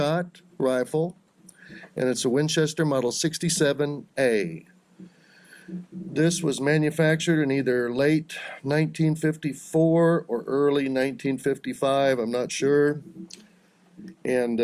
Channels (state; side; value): identical; both; correlation 1.00